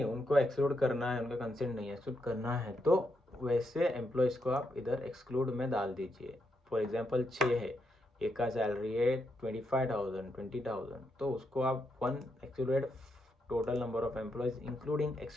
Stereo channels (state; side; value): normal; both; correlation 0.81